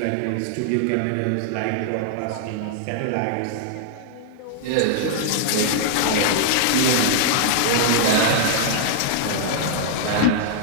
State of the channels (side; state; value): both; different; correlation -0.01